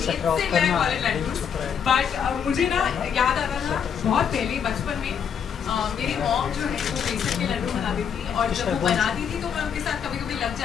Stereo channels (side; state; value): right; quieter; 7.6 dB